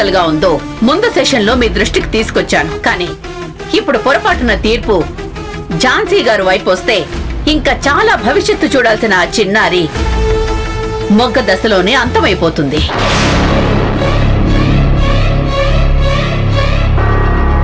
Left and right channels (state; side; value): identical; both; correlation 1.00